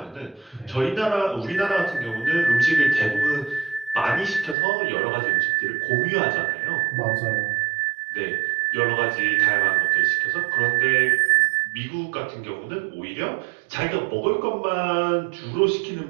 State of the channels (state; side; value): drops out; left; at 4.5 s